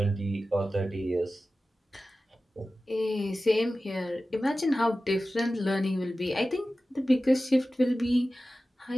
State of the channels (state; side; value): normal; both; correlation 0.95